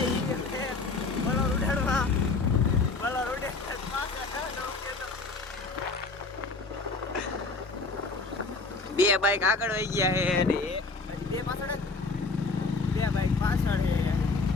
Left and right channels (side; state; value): right; quieter; 3.9 dB